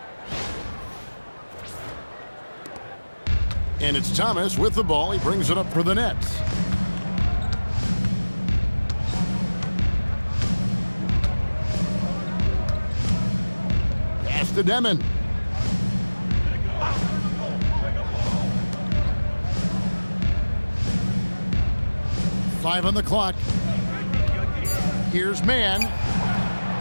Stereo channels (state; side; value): inverted; both; correlation -1.00